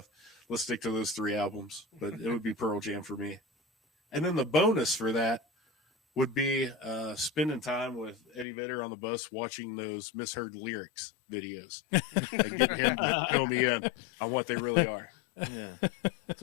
Let's stick to those 3 albums. But it would be Pearl Jam for me. And then the bonus for that would be spending time with Eddie Vedder on the bus watching those misheard lyrics videos and getting him to fill me in on what they really are. Yeah, that's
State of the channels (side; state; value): right; drops out; at 8.5 s